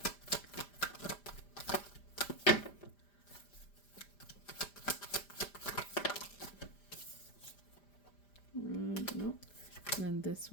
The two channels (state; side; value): late; right; 5.0 ms